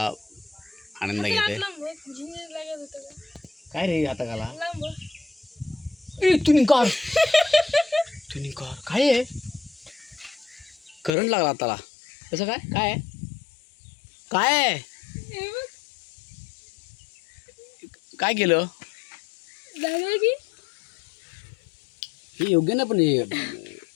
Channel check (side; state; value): right; drops out; at 11.1 s